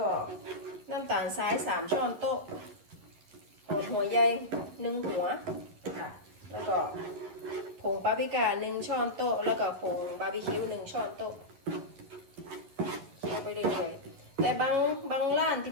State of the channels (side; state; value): left; late; 11 ms